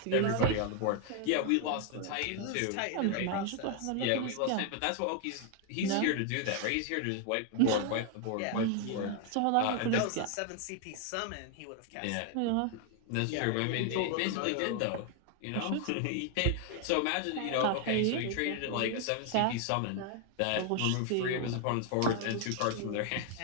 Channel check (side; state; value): both; different; correlation 0.00